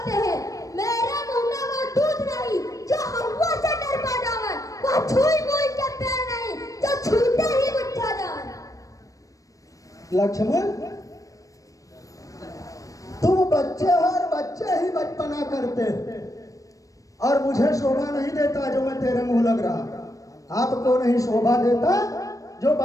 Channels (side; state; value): right; late; 0.16 ms